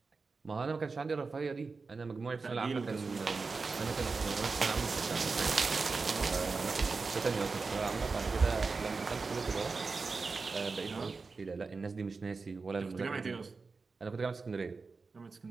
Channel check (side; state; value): left; quieter; 4.3 dB